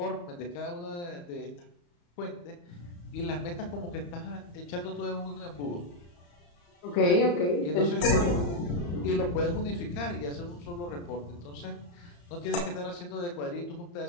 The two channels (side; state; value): right; late; 34 ms